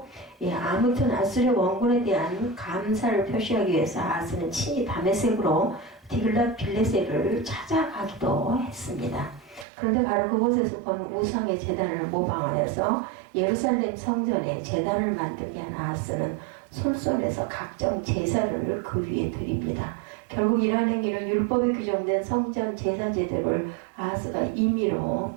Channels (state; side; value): drops out; left; at 9.7 s